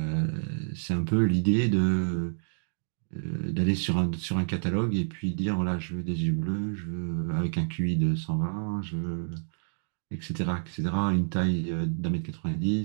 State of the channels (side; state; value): left; silent; digital silence